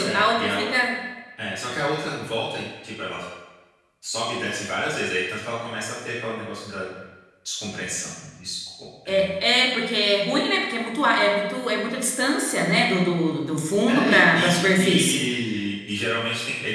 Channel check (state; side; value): identical; both; correlation 1.00